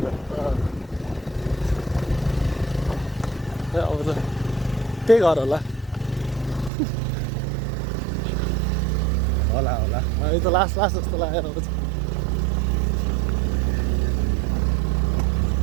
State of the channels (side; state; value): left; drops out; at 6.7 s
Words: अब त त्यही घर होला होला होला यो त लास्ट लास्ट जस्तो लागेर आउँछ।